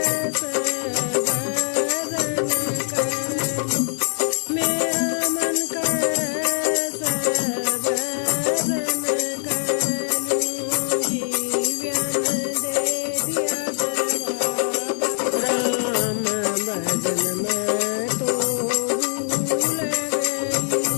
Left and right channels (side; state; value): right; silent; 63 dB below the other